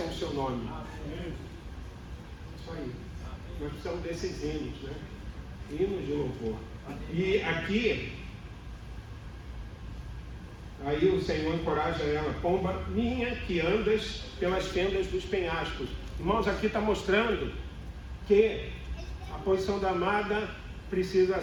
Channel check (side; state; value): both; identical; correlation 1.00